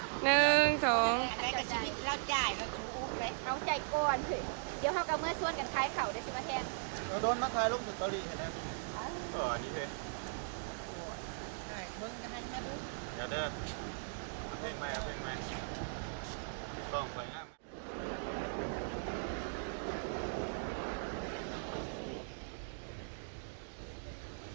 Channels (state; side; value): silent; left; digital silence